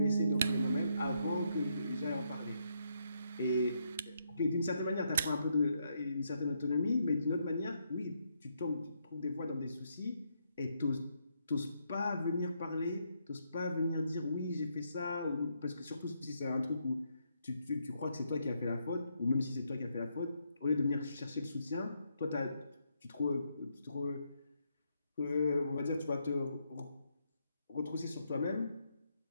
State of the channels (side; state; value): both; inverted; correlation -0.77